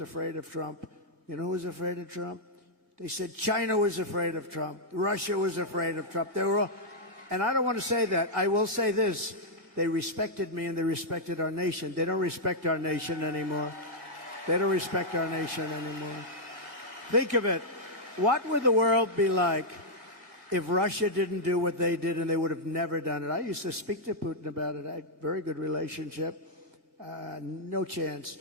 of Trump. You know who was afraid of Trump? They said China was afraid of Trump. Russia was afraid of Trump. They were all, and I don't want to say that. I will say this. They respected me and they respected our nation. They don't respect our nation anymore. They don't respect our nation anymore. Think of it. What would the world be like if Russia didn't do what they did, and they would have never done it? I used to speak to Putin about it. I had a very good relationship. No chance.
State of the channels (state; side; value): late; left; 1.8 ms